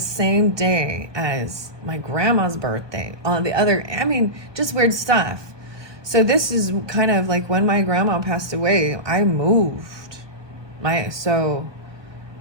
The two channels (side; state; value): left; late; 1.3 ms